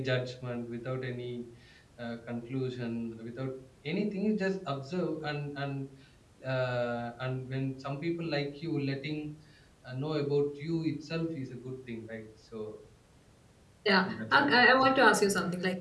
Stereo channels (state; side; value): identical; both; correlation 1.00